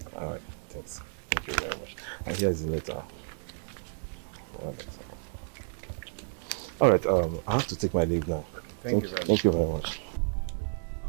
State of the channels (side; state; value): left; silent; digital silence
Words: All right. Thanks. Thank you very much. And here's the letter. All right. I have to take my leave now. Thank you very much. Thank you very much.